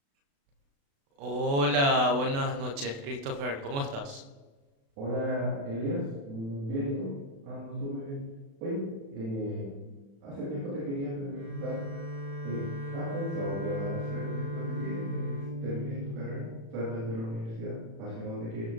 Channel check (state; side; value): late; left; 36 ms